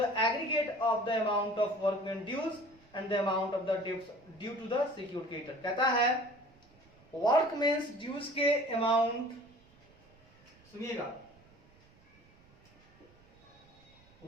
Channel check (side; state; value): right; noise; rumble, 28 dB below the sound